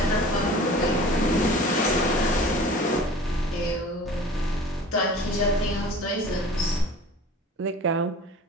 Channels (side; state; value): both; normal; correlation 0.42